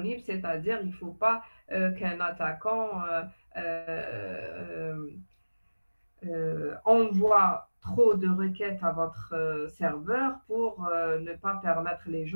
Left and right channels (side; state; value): both; inverted; correlation -1.00